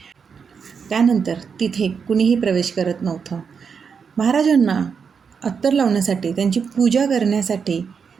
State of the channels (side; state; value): left; quieter; 6.2 dB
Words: त्यानंतर तिथे कुणीही प्रवेश करत नव्हतं. महाराजांना अत्तर लावण्यासाठी, त्यांची पूजा करण्यासाठी